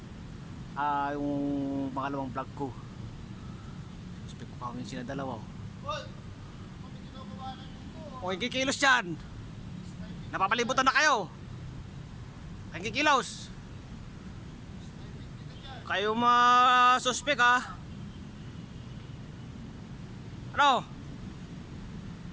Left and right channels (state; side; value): identical; both; correlation 1.00